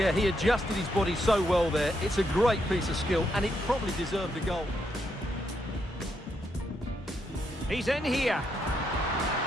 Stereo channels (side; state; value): both; normal; correlation 0.79